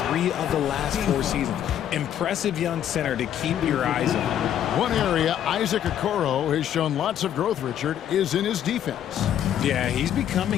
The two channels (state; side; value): quieter; right; 10.3 dB